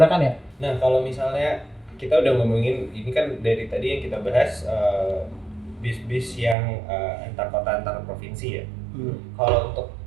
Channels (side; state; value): left; drops out; at 6.6 s